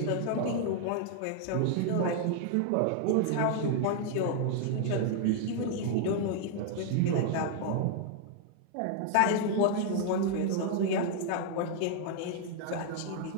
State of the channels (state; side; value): different; both; correlation 0.00